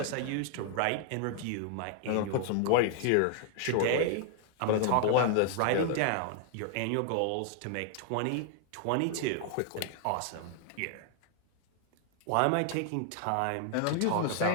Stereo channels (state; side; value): different; both; correlation 0.00